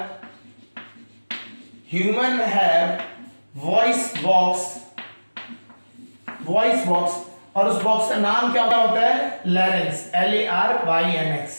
हैव वॉइस बॉक्स, और उस बॉक्स का नाम क्या होता है, लैरेंक्स, LARYNX,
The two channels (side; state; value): both; inverted; correlation -1.00